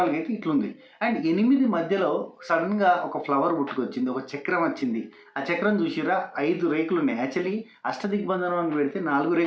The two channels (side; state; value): both; identical; correlation 1.00